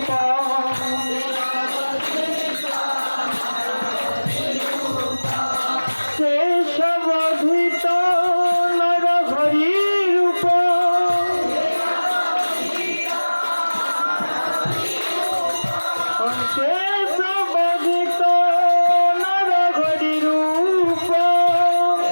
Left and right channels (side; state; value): both; inverted; correlation -1.00